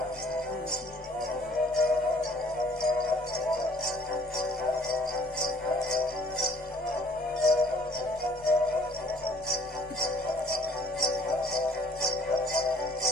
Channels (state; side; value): noise; left; rumble, 25 dB below the sound